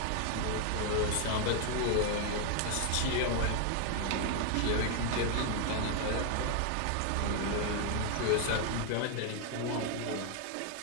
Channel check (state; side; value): different; both; correlation 0.00